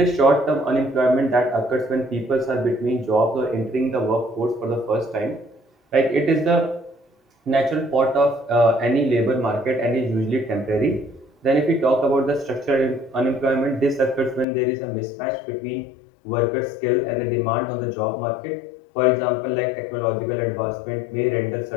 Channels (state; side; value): drops out; right; at 14.5 s